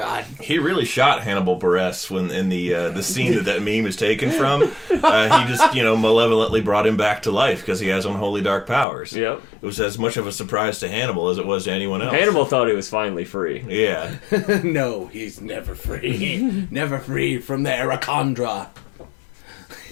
He really shot Hannibal Buress when in the scene that meme is taken from. He just malevolently brought him back to life because he has unholy dark powers. Yep. It was as much of a surprise to Hannibal as it was to anyone else. Hannibal thought he was finally free. Yeah. No, he's never free. Never free from the Arachondra.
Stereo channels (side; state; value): right; drops out; at 8.8 s